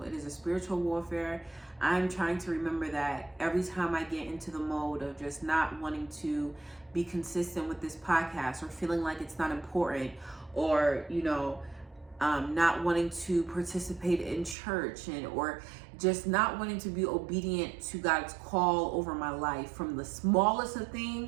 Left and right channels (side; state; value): left; drops out; at 14.6 s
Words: It is a spiritual warfare. I'm trying to remember that every time I get into the mode of just not wanting to be consistent with this podcast, or feeling like it's not important, or, you know, not wanting to participate in church, or just not wanting to be obedient to God's call over my life, from the smallest of